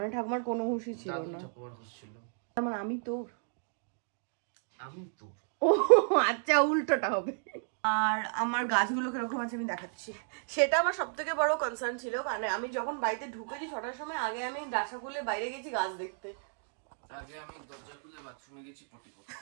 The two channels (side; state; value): left; silent; digital silence